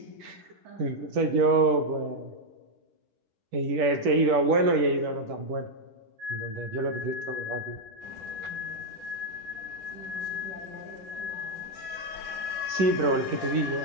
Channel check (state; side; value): late; left; 10 ms